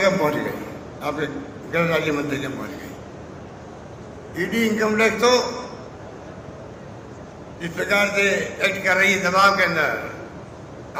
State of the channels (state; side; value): identical; both; correlation 1.00